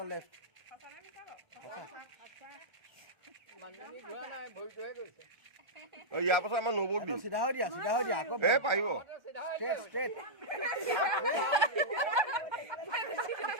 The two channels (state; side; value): late; left; 1.3 ms